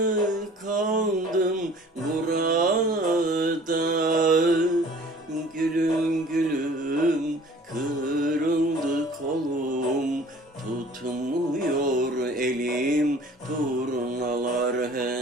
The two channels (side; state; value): both; normal; correlation 0.50